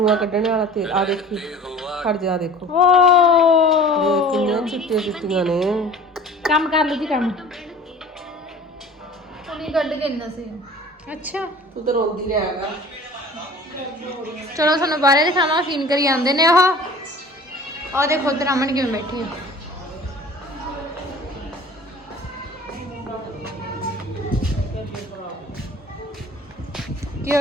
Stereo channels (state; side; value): normal; both; correlation 0.43